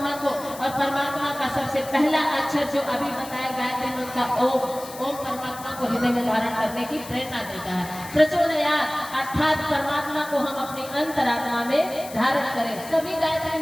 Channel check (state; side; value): noise; left; hiss, 15 dB below the sound